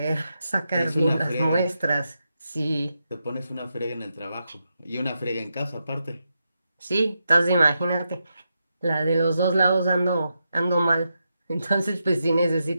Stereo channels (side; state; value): both; inverted; correlation -0.86